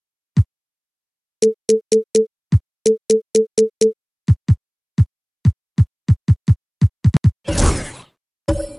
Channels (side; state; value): both; identical; correlation 1.00